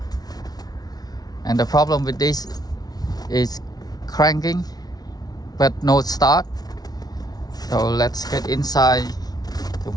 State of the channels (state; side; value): late; right; 0.19 ms